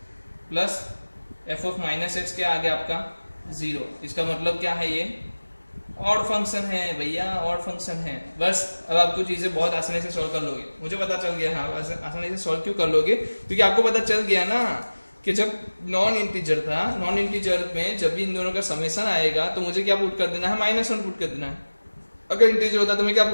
plus f of minus x क्या आ गया आपका जीरो। इसका मतलब क्या है, ये ऑड फंक्शन है भैया, ऑड फंक्शन है। बस अब आपको चीजें बहुत आसानी से सॉल्व कर लोगे, मुझे पता चल गया। हाँ आसानी से सॉल्व क्यों कर लोगे, क्योंकि आपको पता चल गया ना कि जब नॉन इंटीजर था, नॉन इंटीजर में जब भी इन दोनों का समेशन आएगा तो मुझे क्या पुट कर देना है, माइनस वन पुट कर देना है। अगर इंटीजर होता तो मैं क्या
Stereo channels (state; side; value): inverted; both; correlation -1.00